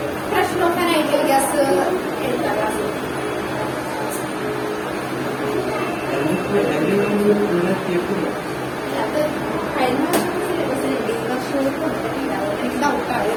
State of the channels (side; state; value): both; identical; correlation 1.00